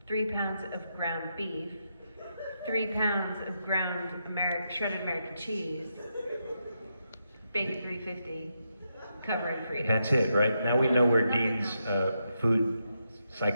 of ground beef, 3 pounds of ground shredded American cheese, bacon 350, covering freedom. That's it, right? Now we know where Dean's food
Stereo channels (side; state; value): both; inverted; correlation -0.83